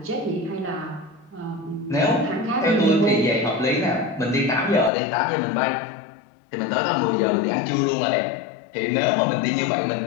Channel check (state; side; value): drops out; right; at 4.9 s